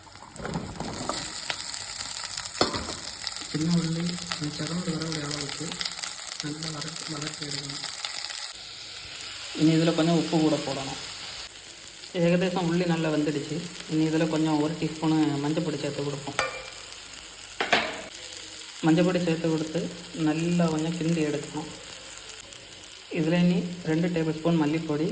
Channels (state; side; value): identical; both; correlation 1.00